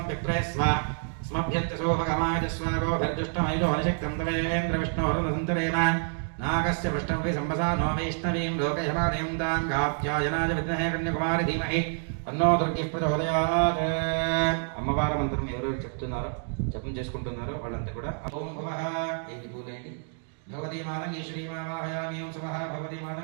विप्रे स्व स्मभ्यन्तसोभगमाय स्वागोभिर्जुष्टमैलो हनिशक्तं तवेन्द्रविष्णोरुणसन्तरेम नागस्य पृष्ठं वै सम्भसा नो वैष्णवीं लोकयमानयं तां कात्यायनाय विद्महे कन्याकुमारी धीमहि तन्नो दुर्गिः प्रचोदयात् అమ్మవారి మంత్రం ఎవరెవరు చెప్తున్నారో జపం చేసుకుంటున్నారో వాళ్ళంతా కూడా ఓం భవః ఏది పూలేండి భగవతి మాతం ఈశ్వరీమావాహయామి ఓం స్వః భగవతి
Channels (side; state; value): left; silent; 59 dB below the other